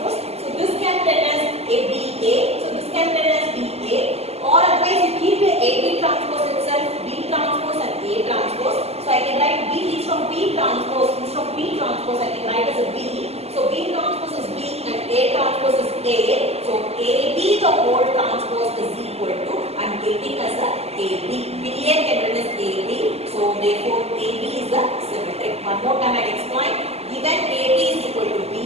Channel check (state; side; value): late; left; 0.30 ms